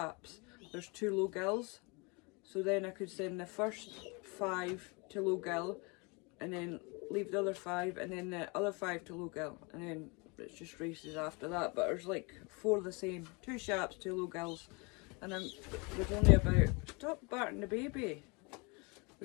there's 2 low gills. So then I could send the first 5 to low gill, and then leave the other 5, and then the other 5 to low gill, and then it's just races after that. But there's like 4 the same, 2 sharps, 2 low gills, And there's only about, stop barking the baby.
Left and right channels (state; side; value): quieter; right; 29.6 dB